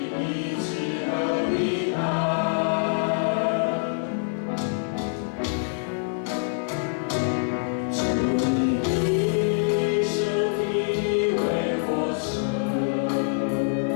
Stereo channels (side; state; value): right; silent; 62 dB below the other